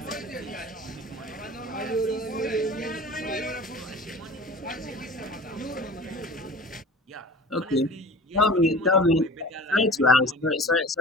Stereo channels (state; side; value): normal; both; correlation 0.39